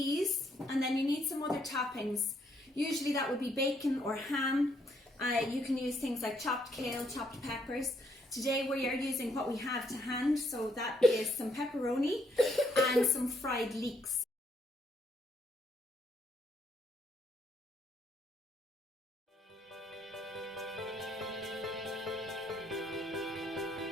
and then you need some other toppings. Usually that would be bacon or ham. You can use things like chopped kale, chopped peppers. Today we are using what we have to hand, so that is some pepperoni and some fried leeks.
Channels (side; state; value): both; normal; correlation 0.72